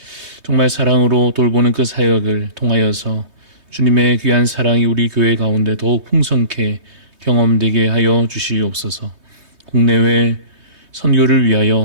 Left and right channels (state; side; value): late; left; 3.2 ms